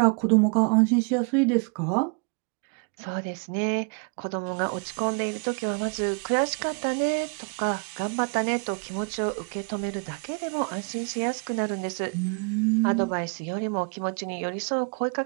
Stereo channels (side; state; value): left; quieter; 37.9 dB